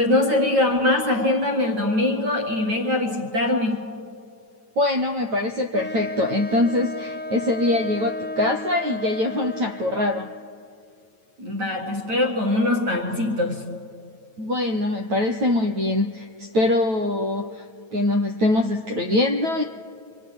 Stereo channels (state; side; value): late; left; 9.1 ms